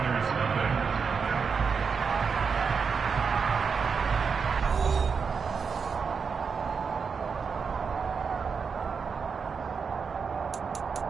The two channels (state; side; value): quieter; left; 5.7 dB